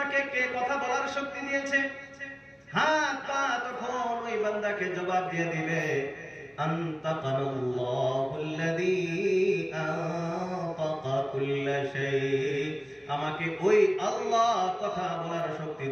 কে কথা বলার শক্তি দিয়েছে, হাত পা তখন ওই বান্দাকে জবাব দিয়ে দিবে, আনতাকানাল্লাহুল্লাযী আনতাকা কুল্লা শাই, আমাকে ওই আল্লাহ কথা বলার শক্তি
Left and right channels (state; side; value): identical; both; correlation 1.00